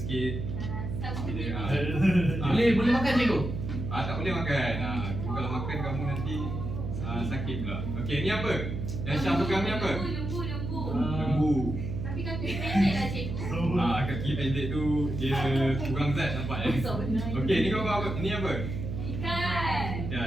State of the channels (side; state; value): right; noise; hum, 4 dB below the sound